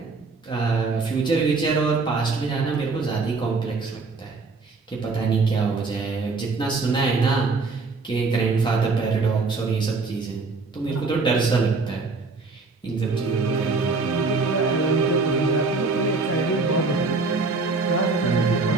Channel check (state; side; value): quieter; left; 4.0 dB